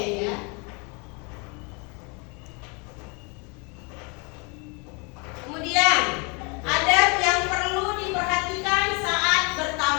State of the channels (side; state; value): right; quieter; 31.4 dB